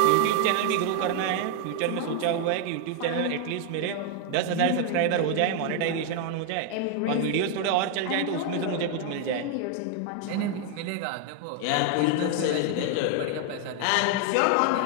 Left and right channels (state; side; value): different; both; correlation 0.01